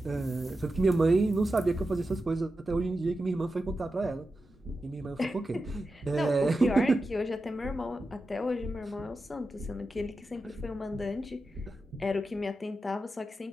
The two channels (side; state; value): both; normal; correlation 0.91